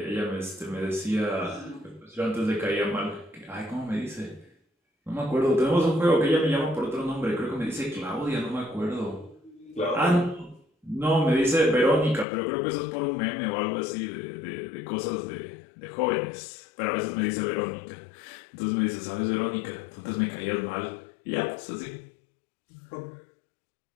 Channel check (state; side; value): drops out; right; at 12.2 s